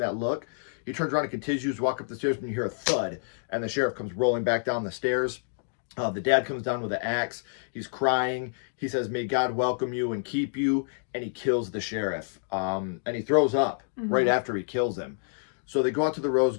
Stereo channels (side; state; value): right; silent; digital silence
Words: look. He turns around and continues to walk up the stairs, and you hear a thud. And the sheriff comes rolling back down the stairs. The dad comes down with an axe. He's crying. He says, may God welcome you and keep you. And he kills the sheriff. And he throws up right after he kills him. So they go out to the rose